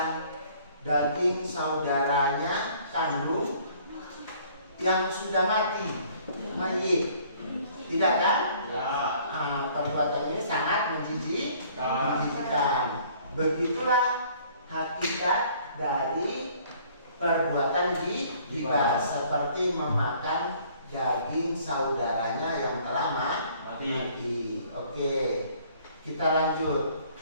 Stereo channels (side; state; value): both; inverted; correlation -0.57